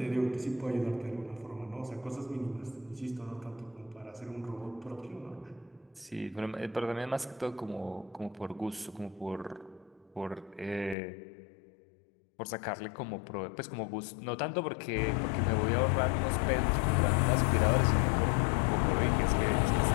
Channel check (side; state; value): right; drops out; at 11.0 s